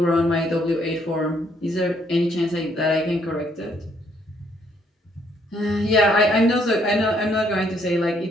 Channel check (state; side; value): normal; both; correlation 0.69